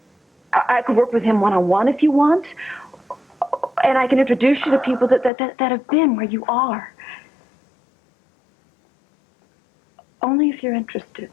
I could work with him one-on-one if you want, and I can introduce you to people that have been where you are. Only if you're interested.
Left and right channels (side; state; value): right; drops out; at 5.3 s